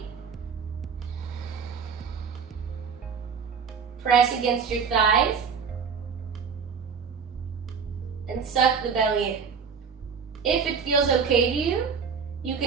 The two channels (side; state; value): left; quieter; 6.2 dB